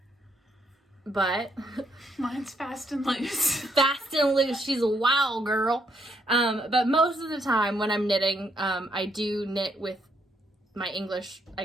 But mine's fast and loose. Fast and loose. She's a wild girl. But most of the time when I'm knitting, I do knit with my English,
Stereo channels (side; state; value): both; normal; correlation 0.73